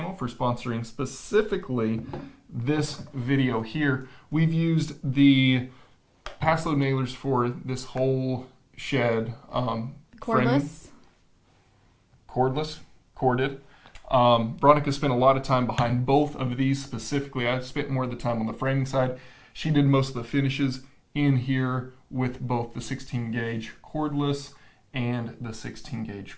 for sponsoring specifically this video here. We've used the Pass Load nailers for this whole shed. Cordless. Corded. Veronica spent a lot of time behind both of these specifically. I spent more of the time on the framing side. She did most of the finishes in here with both the 16 gauge cordless and the 16 gauge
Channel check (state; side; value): identical; both; correlation 1.00